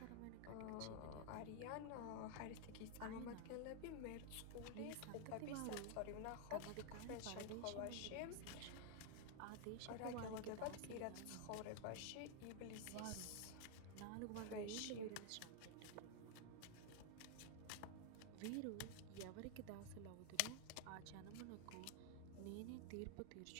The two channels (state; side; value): different; both; correlation 0.00